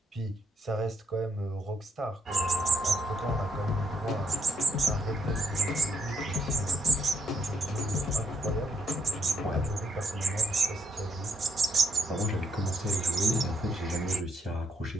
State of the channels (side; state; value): both; normal; correlation 0.74